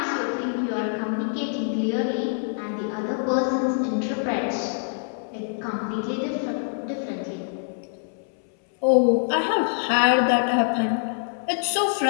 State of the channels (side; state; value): right; silent; 62 dB below the other